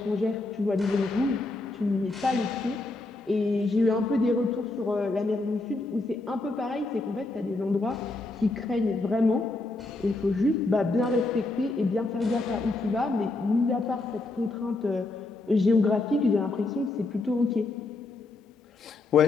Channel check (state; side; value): quieter; right; 3.2 dB